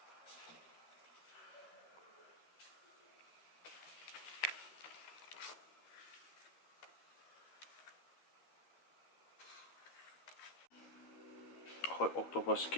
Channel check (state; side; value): late; right; 12 ms